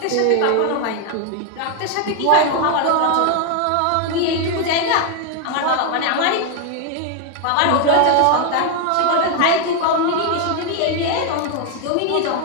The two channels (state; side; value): different; both; correlation 0.01